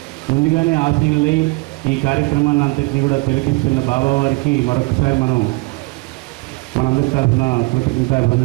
ముందుగానే ఆశీనులై ఈ కార్యక్రమాన్ని అంతటినీ కూడా తిలకిస్తున్న బాబా వారికి మరొకసారి మనందరి తరఫున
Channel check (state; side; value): quieter; left; 24.6 dB